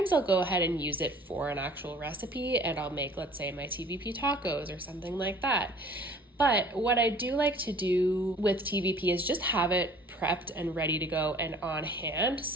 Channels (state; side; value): normal; both; correlation 0.50